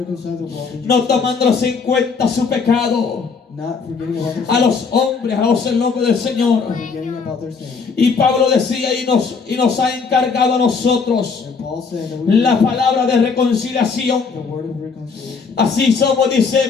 the world in no Jesus Christ, tomándolos en cuenta su pecado, not forgetting about their a sin, los hombres, a el nombre del Señor. forgetting about their sin. Y Pablo decía y nos ha encargado a nosotros And Paul said that we la palabra de reconciliación. the word of reconciliation. Así somos, dice,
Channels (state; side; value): quieter; right; 5.2 dB